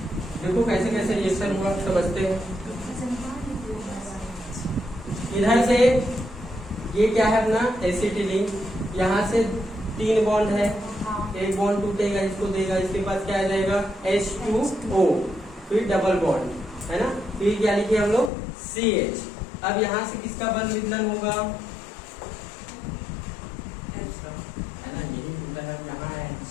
देखो कैसे कैसे रिएक्शन हुआ, समझते हैं। इधर से ये क्या है अपना एसिटिलीन, यहाँ से 3 बॉन्ड है, एक बॉन्ड टूटेगा, इसको देगा, इसके पास क्या आ जाएगा? H2O, फिर डबल बॉन्ड, है ना? फिर क्या लिखे हम लोग? CH। अब यहाँ से किसका बंध विदलन होगा? है ना, यही होता है। यहाँ है,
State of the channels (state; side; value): drops out; right; at 18.3 s